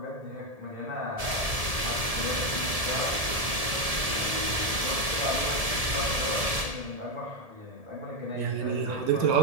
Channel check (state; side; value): late; left; 1.7 ms